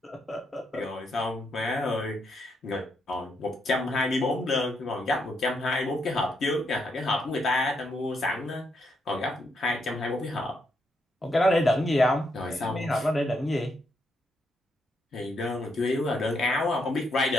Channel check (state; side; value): normal; both; correlation 0.78